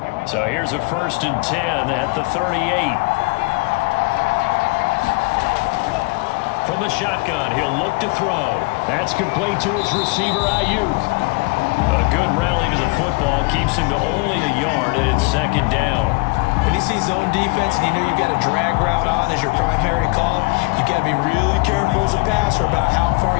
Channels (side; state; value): right; quieter; 28.2 dB